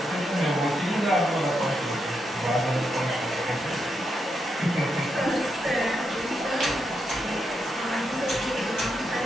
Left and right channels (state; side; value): normal; both; correlation 0.82